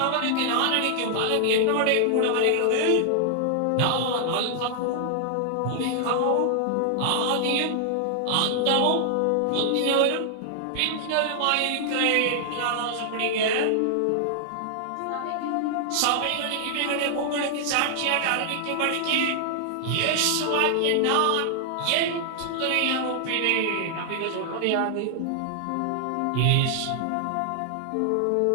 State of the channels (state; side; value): different; both; correlation 0.00